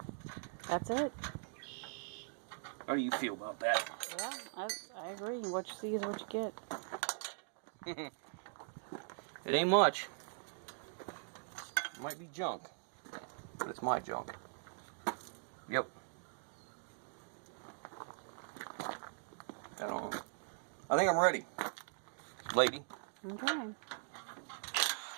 That's it. How do you feel about that? Yeah, I agree. What you see is what you get. It ain't much. It might be junk, but it's my junk. Yep. I don't know. I think I'm ready, lady. Okay. I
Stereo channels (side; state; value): left; silent; digital silence